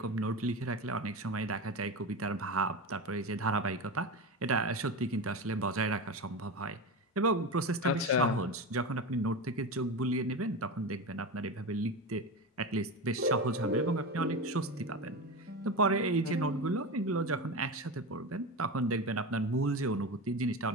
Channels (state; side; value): normal; both; correlation 0.22